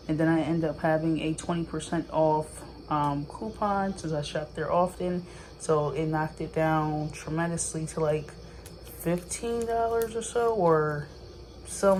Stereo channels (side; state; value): both; identical; correlation 1.00